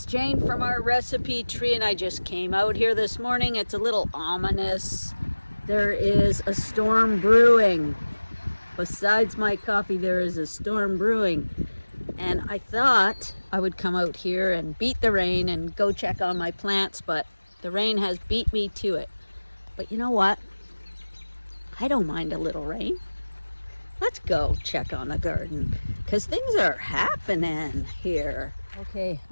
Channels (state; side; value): inverted; both; correlation -1.00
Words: Jane from our recipe tree, and I just came out here this morning. It's a little ominous. There is a storm brewing. Besides my coffee, there is a storm brewing. And I thought I would come out here and beat the rain and go check on my plants, but the rain has beat me to it. But you know what? I don't mind a little rain. Let's go check on the garden because things are happening here. Okay,